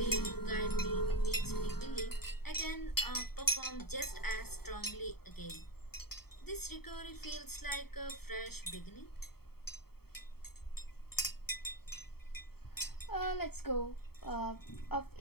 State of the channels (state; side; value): late; right; 0.95 ms